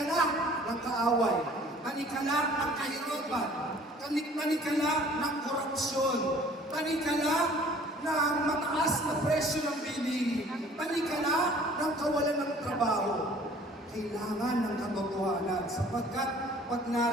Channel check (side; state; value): both; normal; correlation 0.52